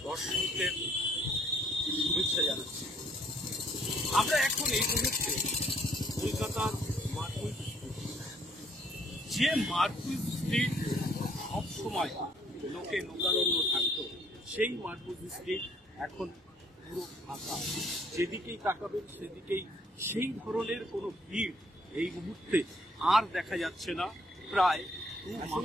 দর্শকদের শুভেচ্ছা জানাচ্ছি। আমরা এখন এই মুহূর্তে কলকাতার মার্কুইস স্ট্রিট, যে মার্কুইস স্ট্রিট সবসময় লোকে লোকারণ্য থাকতো, সেই মার্কুইস স্ট্রিট এখন পুরো ফাঁকা। যেদিকেই তাকাবেন সেদিকেই সেই ধরনের কোনো ভিড় এই মুহূর্তে আর দেখা যাচ্ছে না। প্রায় 2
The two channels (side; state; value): both; normal; correlation 0.65